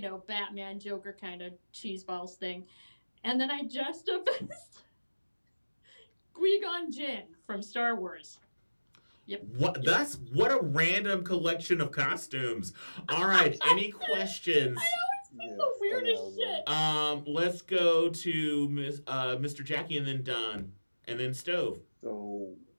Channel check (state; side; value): inverted; both; correlation -1.00